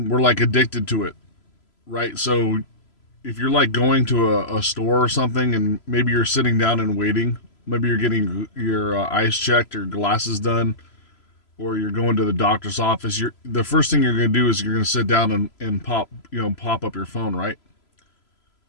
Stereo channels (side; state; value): right; late; 3.0 ms